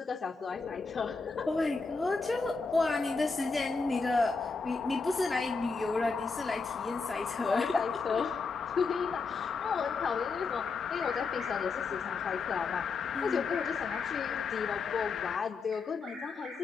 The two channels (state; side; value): quieter; right; 4.5 dB